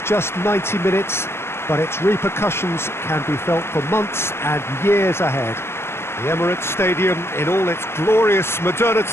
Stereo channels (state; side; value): late; right; 0.12 ms